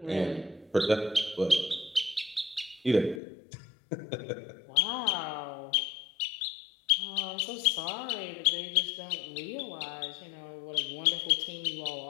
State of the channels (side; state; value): right; drops out; at 3.2 s